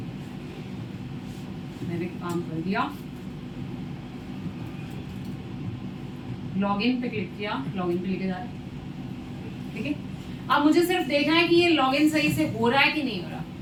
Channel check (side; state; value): both; identical; correlation 1.00